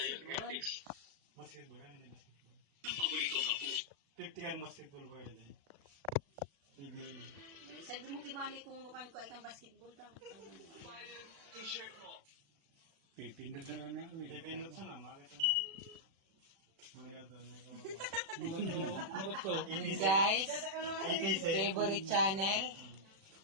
Basketball yan, hindi basketball. Tiptikan basketball ba yan eh? PBA. Sabi mo kibali kung nukan ko ay kang basketball daw. Pipindot sa na, makita mo. Muli ka doon. Guys, ETC. favorite channel.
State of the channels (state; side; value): late; left; 35 ms